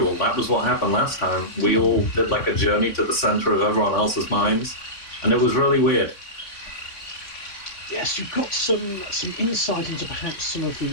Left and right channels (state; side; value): late; right; 3.6 ms